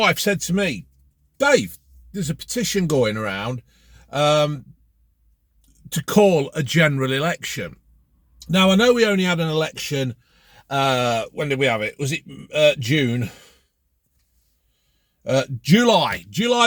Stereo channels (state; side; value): identical; both; correlation 1.00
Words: said to me, Dave, there's a petition going around to call a general election. Now, I know we only had an election, when did we have it? Was it June? July